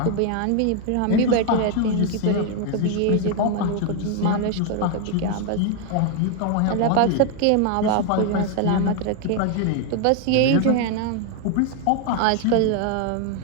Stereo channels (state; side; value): different; both; correlation 0.01